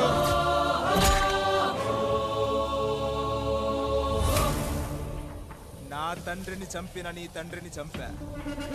నా తండ్రిని చంపిన నీ తండ్రిని చంపా.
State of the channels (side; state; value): both; identical; correlation 1.00